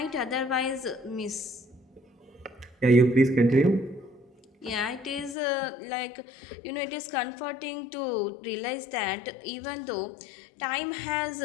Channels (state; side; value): drops out; right; at 5.4 s